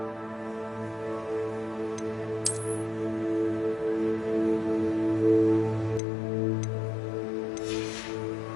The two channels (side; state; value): right; drops out; at 6.0 s